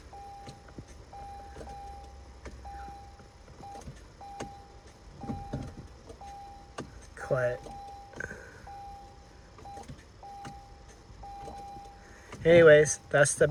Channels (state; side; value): identical; both; correlation 1.00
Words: Quiet. Anyways, that's the